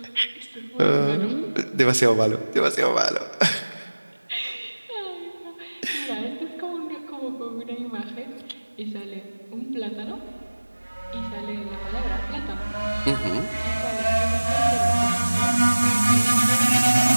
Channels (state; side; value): inverted; both; correlation -1.00